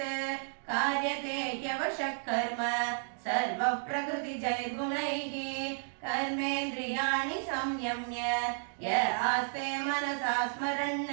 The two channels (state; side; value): silent; left; digital silence